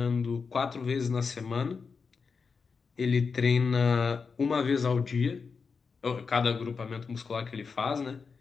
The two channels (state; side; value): quieter; right; 5.2 dB